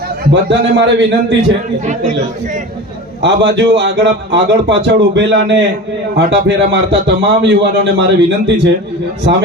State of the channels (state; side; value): normal; both; correlation 0.32